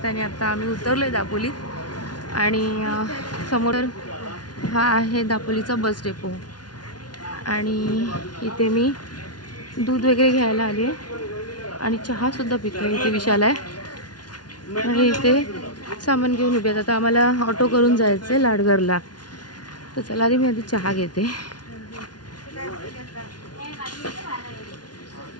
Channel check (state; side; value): late; right; 0.69 ms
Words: आणि आता आम्ही उतरलो आहे दापोलीत. आणि समोर हा आहे दापोलीचा बस डेपो. आणि इथे मी दूध वगैरे घ्यायला आली आहे आणि चहासुद्धा पितो. इथे विशाल आहे आणि इथे सामान घेऊन उभे आहेत. आता आम्हाला ऑटो करून जायचं आहे लाडघरला. तर चला आधी मी आधी चहा घेते.